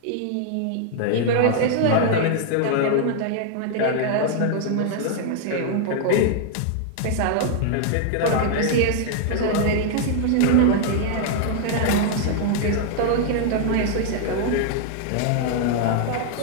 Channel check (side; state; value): both; different; correlation 0.00